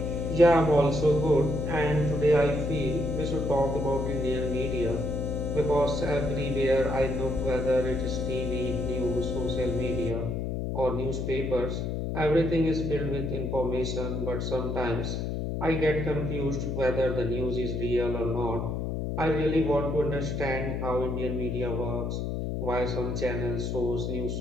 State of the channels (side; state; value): left; noise; hum, 2 dB below the sound